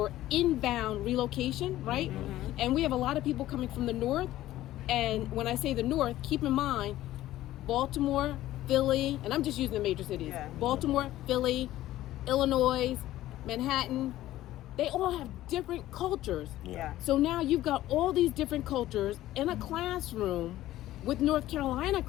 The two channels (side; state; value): right; quieter; 14.7 dB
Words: inbound relocation, right? Mm-hmm. And we have a lot of people coming from the north. And when I say the north, keep in mind Baltimore, Philly, and I'm just using the major cities. Yeah. Baltimore, Philly, Illinois, Manhattan, they all have different cultures. Yeah. So now you've got all these different cultures in a classroom with North Carolina